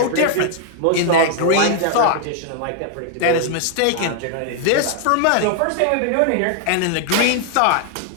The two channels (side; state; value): both; different; correlation 0.00